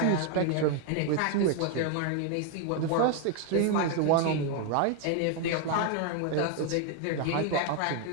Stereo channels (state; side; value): different; both; correlation 0.01